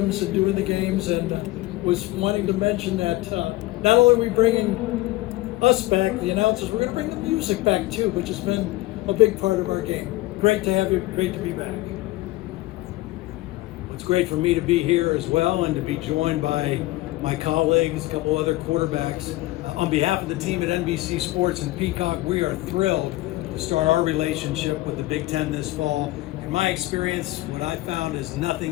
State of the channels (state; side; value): quieter; right; 18.6 dB